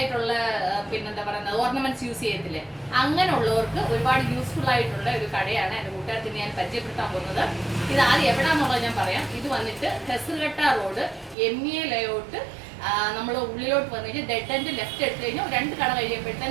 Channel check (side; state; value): left; drops out; at 11.4 s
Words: പിന്നെന്താ പറയുന്നത് ഓർണമെന്റ്സ് യൂസ് ചെയ്യത്തില്ലേ, അങ്ങനെയുള്ളവർക്ക് ഒരുപാട് യൂസ്ഫുൾ ആയിട്ടുള്ള ഒരു കടയാണ് എൻ്റെ കൂട്ടുകാർക്ക് ഞാൻ പരിചയപ്പെടുത്താൻ പോകുന്നത്. ഇത് ആദ്യം എവിടാന്നുള്ളത് ഞാൻ പറയാം. ഇത് വന്നിട്ട് ഹെസർഘട്ട റോഡ് MA ലേഔട്ട്, നമ്മൾ ഉള്ളിലോട്ട് വന്നു കഴിഞ്ഞാൽ ഡെഡ് എൻഡ് ലെഫ്റ്റ് എടുത്തു കഴിഞ്ഞാൽ 2 കട